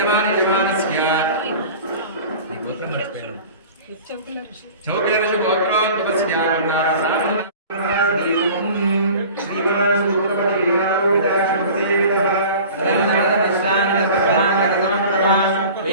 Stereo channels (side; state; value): both; inverted; correlation -0.41